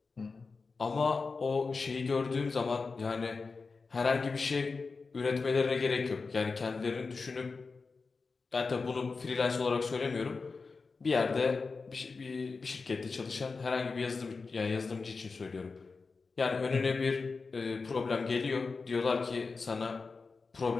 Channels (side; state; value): right; quieter; 4.4 dB